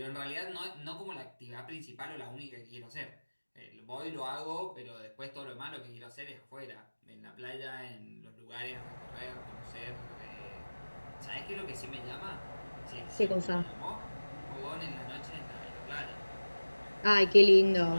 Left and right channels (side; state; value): both; inverted; correlation -1.00